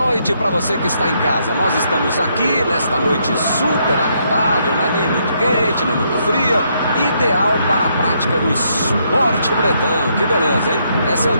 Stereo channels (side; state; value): both; inverted; correlation -0.74